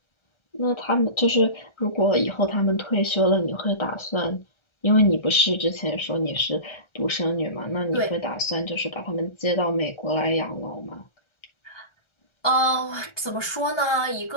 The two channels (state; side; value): late; right; 1.4 ms